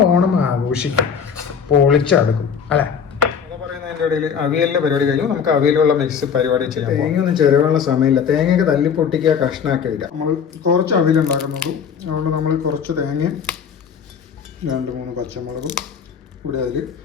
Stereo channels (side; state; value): right; quieter; 7.0 dB